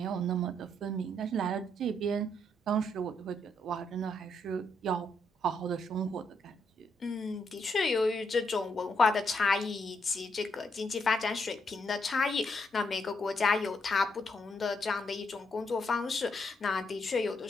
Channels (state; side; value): normal; both; correlation 0.77